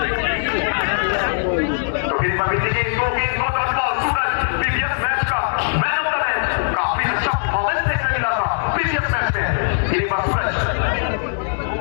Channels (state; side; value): silent; right; digital silence